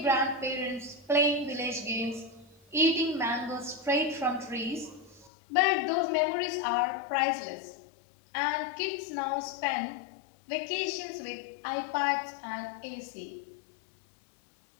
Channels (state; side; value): drops out; right; at 5.3 s